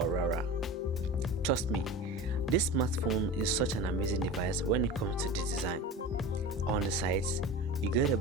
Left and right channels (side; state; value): both; normal; correlation 0.31